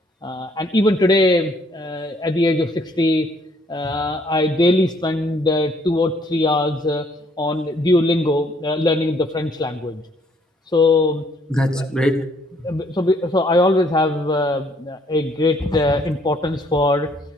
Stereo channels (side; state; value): both; normal; correlation 0.65